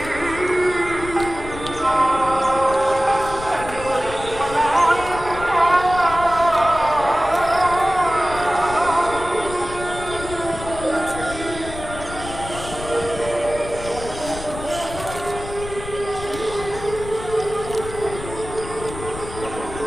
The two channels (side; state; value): left; noise; rumble, 12 dB below the sound